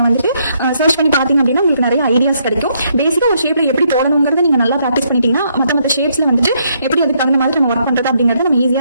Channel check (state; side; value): inverted; both; correlation -0.73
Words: வந்துட்டு சர்ச் பண்ணி பாத்தீங்க அப்படின்னா உங்களுக்கு நிறைய ஐடியாஸ் கிடைக்கும். பேசிக்கா ஒரு ஷேப்ல எப்படி போடணுங்கிறத நீங்க நல்லா ப்ராக்டிஸ் பண்ணிட்டீங்கன்னா மற்ற ஷேப்ஸ்ல வந்துட்டு எப்படி அதுக்கு தகுந்த மாதிரி நம்ம ஒர்க் பண்றது அப்படிங்கறத நம்ம ஈஸியா